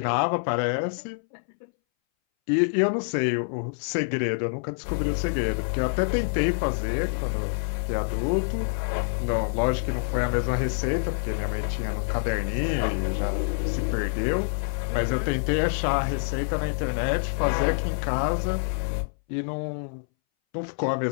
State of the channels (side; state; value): right; silent; 61 dB below the other